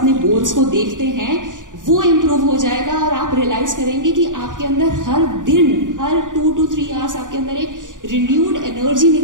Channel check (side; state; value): left; late; 0.88 ms